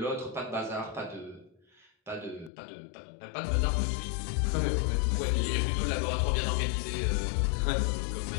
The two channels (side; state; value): right; drops out; at 2.5 s